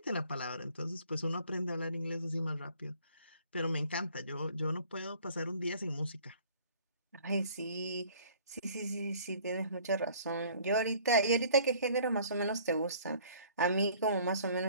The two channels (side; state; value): both; inverted; correlation -0.54